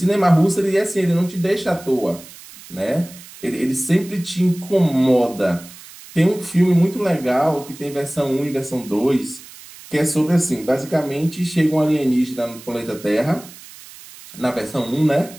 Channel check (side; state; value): right; noise; hiss, 19 dB below the sound